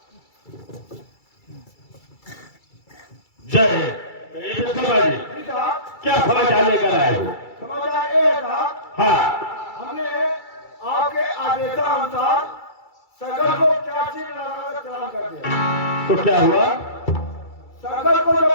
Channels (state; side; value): late; right; 2.3 ms